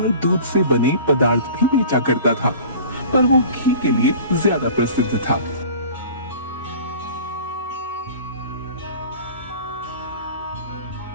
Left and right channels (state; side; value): inverted; both; correlation -0.42